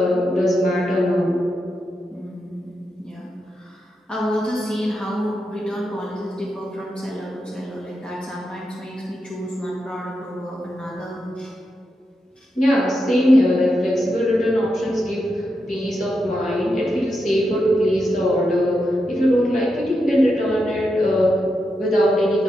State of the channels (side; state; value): both; normal; correlation 0.86